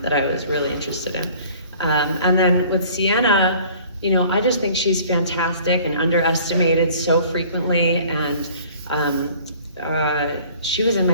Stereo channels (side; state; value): both; inverted; correlation -0.51